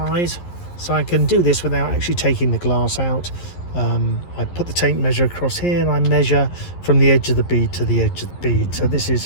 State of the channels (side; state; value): right; late; 11 ms